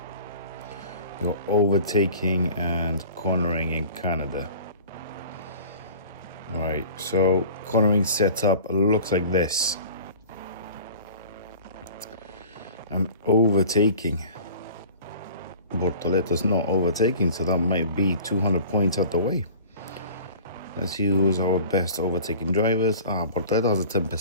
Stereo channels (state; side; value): inverted; both; correlation -0.44